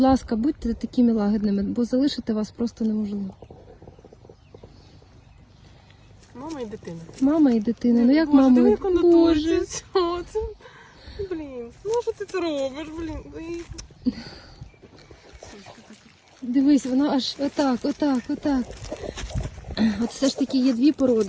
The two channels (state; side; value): identical; both; correlation 1.00